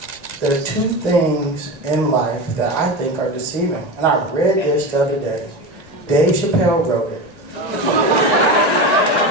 there are two things in life that I think are deceiving. And I read this the other day. Dave Chappelle wrote it.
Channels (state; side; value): late; left; 1.9 ms